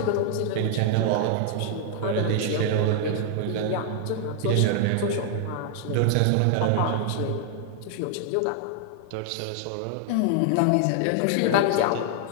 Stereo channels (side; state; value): both; different; correlation 0.00